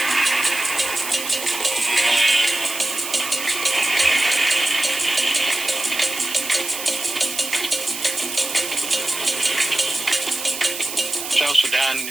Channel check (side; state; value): right; noise; hiss, 7 dB below the sound